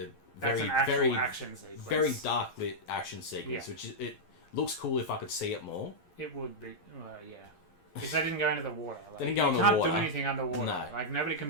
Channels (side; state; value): right; late; 11 ms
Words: very action sequence. Very dark lit action sequence, which it looks cool if I could see it more. It would be, because they didn't go into the water. Like, they didn't go in the water. You water. can't do anything underwater. No. Like, nobody